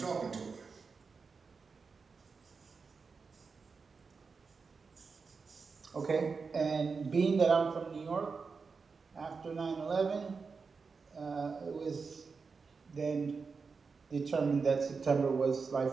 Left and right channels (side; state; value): left; quieter; 4.9 dB